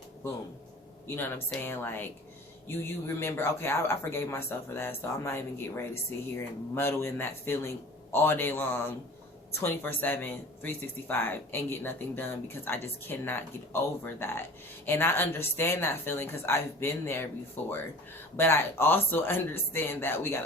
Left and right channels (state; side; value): normal; both; correlation 0.42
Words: boom. You know what I'm saying? Like, you remember, okay, I forgave myself for that, so I'm not even getting ready to sit here and muddle in that feeling all day long, 24/7, 365, and get nothing done, because I just cannot get over that. And I understand that feeling because I've been there before. But I also understand that we